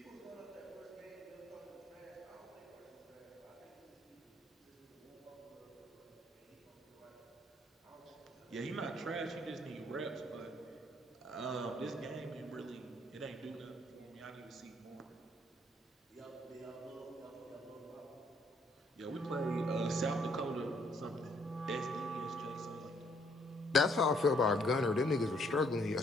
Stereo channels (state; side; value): normal; both; correlation 0.67